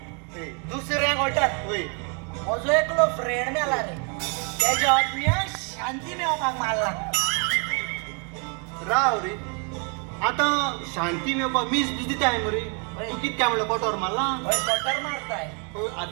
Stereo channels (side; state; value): left; quieter; 36.2 dB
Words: दुसऱ्या गोटात म्हजो एकलो फ्रेंड मेला रे त्याच्या आत्म्या शांती मेळपाक मारला राव रे आता शांती मेळपाक मीस दिताय मरे तू कित काय म्हणलं कटोर मारला होय कटर मारताय होय,